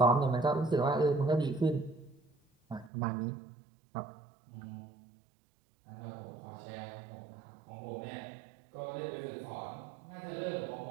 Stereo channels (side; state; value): left; drops out; at 2.9 s